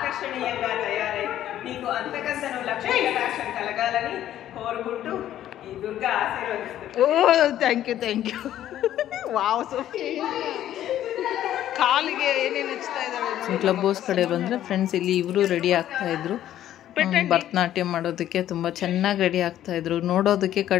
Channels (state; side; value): quieter; right; 12.0 dB